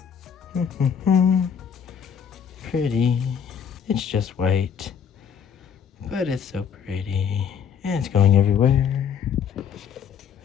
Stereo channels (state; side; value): quieter; right; 7.5 dB